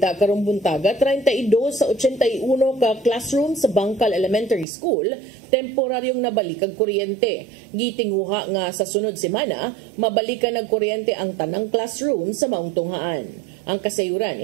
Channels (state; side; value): drops out; left; at 4.7 s